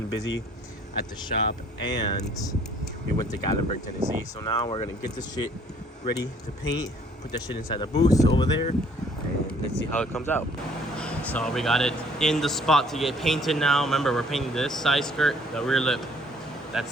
busy at the shop and we went to Gatlinburg, Tennessee. So now we're gonna get this shit ready to paint, put that shit inside the booth over there, and let's see how it comes out. So we got it in the spot to get painted now. Remember, we're painting this side skirt, the rear lip.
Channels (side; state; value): both; normal; correlation 0.59